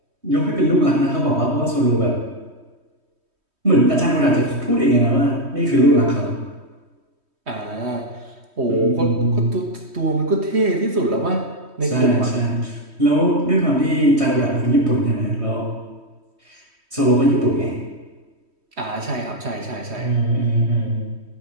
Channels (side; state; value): left; late; 3.1 ms